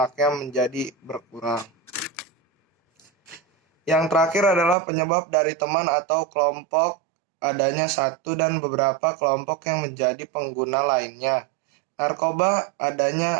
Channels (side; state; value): left; drops out; at 4.8 s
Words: menjadi berkurang. Yang terakhir adalah penyebab dari teman atau kelompok, adanya satu dan beberapa kelompok yang menjadi pengguna lainnya. Narkoba